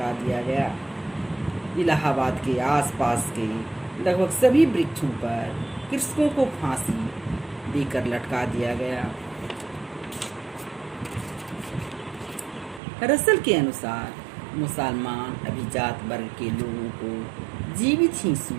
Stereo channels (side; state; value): left; drops out; at 12.8 s